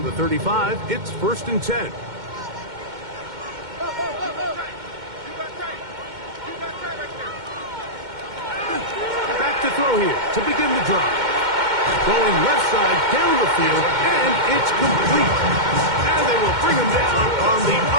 the 35, it's 1st and 10. Back to throw here to begin the drive. Going left side down the field, and it's complete. And they will bring him down on the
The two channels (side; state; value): left; late; 2.1 ms